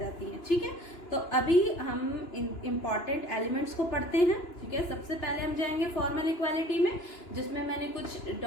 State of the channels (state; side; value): late; right; 2.9 ms